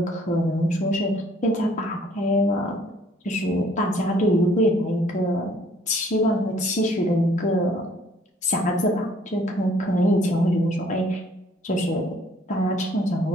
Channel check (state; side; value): normal; both; correlation 0.60